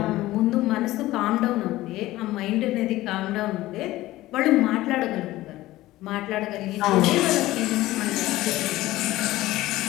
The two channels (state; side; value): quieter; right; 16.8 dB